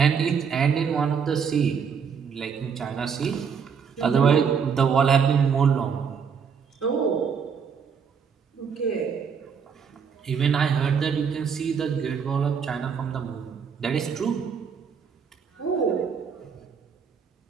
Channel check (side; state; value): left; quieter; 6.6 dB